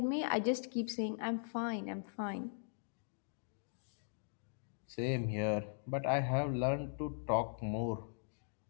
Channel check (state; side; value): silent; right; digital silence